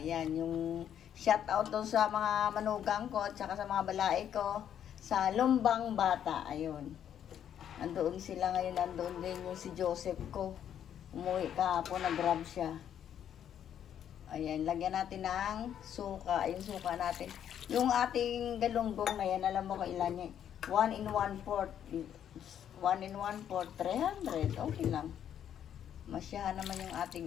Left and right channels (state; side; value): quieter; right; 9.6 dB